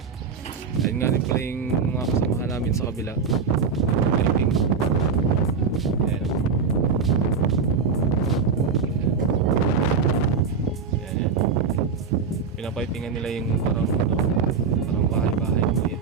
Ayun nga rin pala yung mga kasamahan namin sa kabila. Helping. Ayan. pinapipingan nila yung parang ano, parang bahay-bahay maliit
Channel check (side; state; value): left; quieter; 5.5 dB